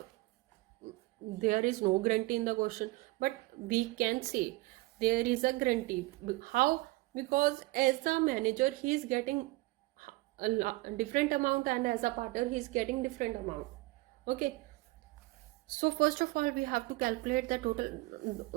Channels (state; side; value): quieter; left; 21.6 dB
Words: there is no guarantee in the question, but we can say there is a guarantee. How? Because as a manager he is getting a different amount, and as a partner he is getting different amount. Okay, so first of all we have to calculate the total